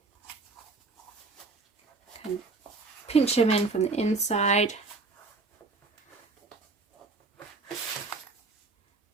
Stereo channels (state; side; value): quieter; left; 3.8 dB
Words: And pinch them in from the inside.